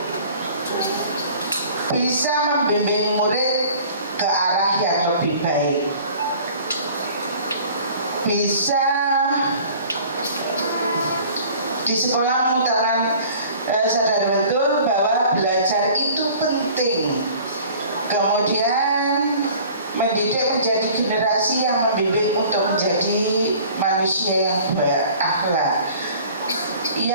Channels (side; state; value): both; inverted; correlation -0.47